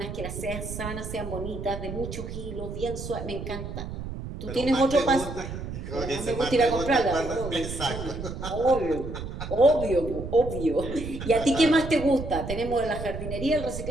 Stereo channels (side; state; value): right; noise; rumble, 7 dB below the sound